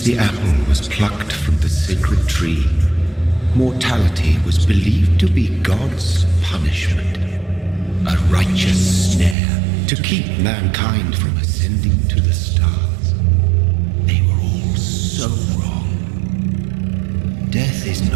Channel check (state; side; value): drops out; left; at 9.3 s